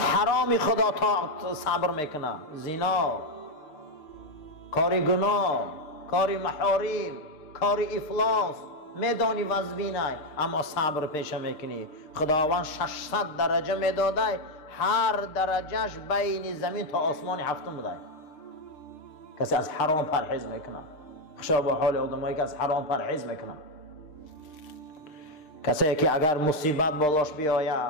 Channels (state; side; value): late; right; 6.7 ms